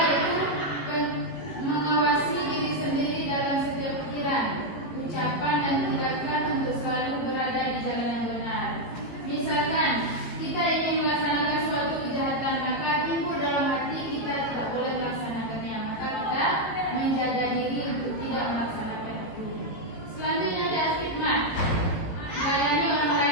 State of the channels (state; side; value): late; right; 18 ms